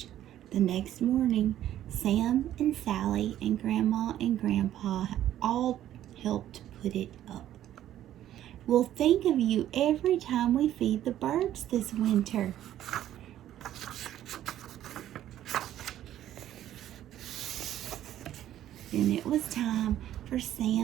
The next morning, Sam and Sally and Grandma and Grandpa all helped put it up. "We'll think of you every time we feed the birds this winter." Then it was time for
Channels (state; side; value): quieter; left; 12.2 dB